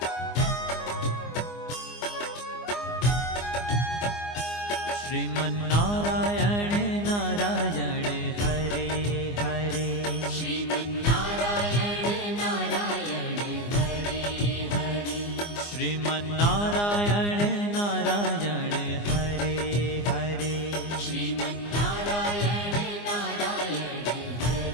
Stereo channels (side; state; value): right; late; 24 ms